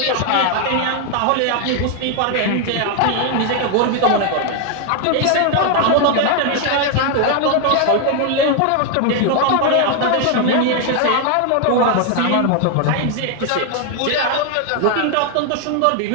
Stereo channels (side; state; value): both; different; correlation 0.00